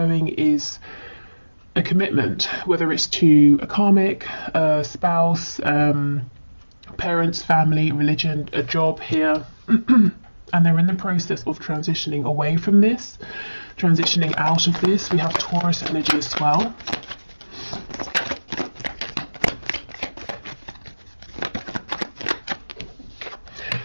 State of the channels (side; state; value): both; inverted; correlation -1.00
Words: is a commitment, whether it's to a karmic, a spouse, parents, family, religion, a job here, and they're in the process of transitioning away from this, transitioning out of this. We have Taurus energy as well.